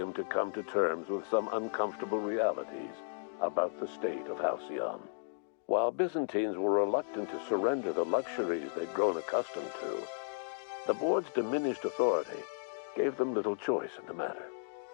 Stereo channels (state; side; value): silent; right; digital silence